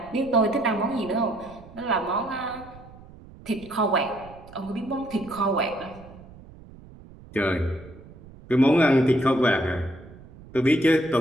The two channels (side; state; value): right; noise; rumble, 20 dB below the sound